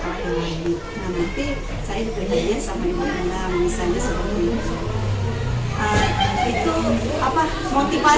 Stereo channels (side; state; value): both; identical; correlation 1.00